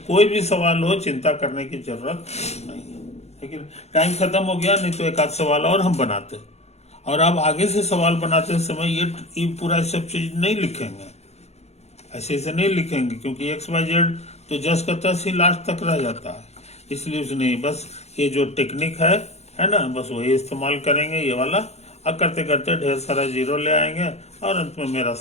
भी सवाल हो चिंता करने की जरूरत नहीं है। लेकिन टाइम खत्म हो गया, नहीं तो एक आध सवाल और हम बनाते, और अब आगे से सवाल बनाते समय ये पूरा सब चीज नहीं लिखेंगे, ऐसे नहीं लिखेंगे, क्योंकि XYZ तो जस का तस ही लास्ट तक रह जाता है, इसलिए उसने बस ये जो टेक्निक है ना, बस वही इस्तेमाल करेंगे ये वाला, अब करते करते ढेर सारा जीरो ले आएंगे, और अंत में मेरा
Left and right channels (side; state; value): right; late; 0.31 ms